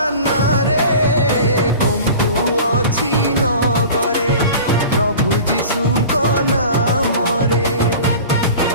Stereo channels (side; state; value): both; inverted; correlation -0.39